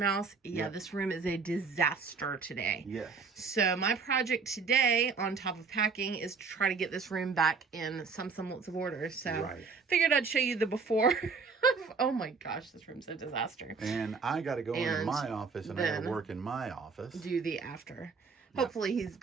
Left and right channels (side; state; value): left; quieter; 5.0 dB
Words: Yeah, This room is a disaster today. Yes. So my project today, on top of packing, is to try to get this room back in some semblance of order. So figured I'd show you the before. Oh my gosh, this room's a disaster. And I got to go into my office, and I got to work in my office. Do the after. Hopefully